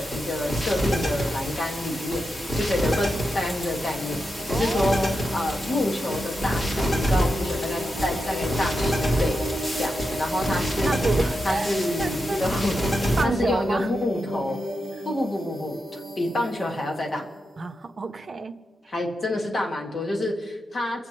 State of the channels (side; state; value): both; normal; correlation 0.88